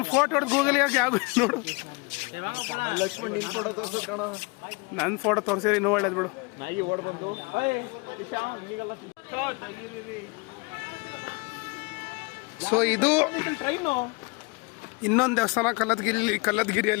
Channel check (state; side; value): quieter; right; 29.0 dB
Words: ಫೋಟೋ ಹೊಡೆದು ಗೂಗಲ್ ಯಾಕೆ ಯಾವ ನೋಡು. ಲಕ್ಷ್ಮಣ್ ನಿನ್ ಫೋಟೋ ತೋರ್ಸು ಕಣ. ನನ್ನ ಫೋಟೋ ತೋರಿಸಿದ್ರೆ ಇನ್ನೂ ಒಳ್ಳೇದು ಬಿಡು. ನಾಯಿ ಓಡ್ ಬಂದು ಸೊ ಇದು ಟ್ರೈನು ಇನ್ನೊಂದು ದೇವಸ್ಥಾನ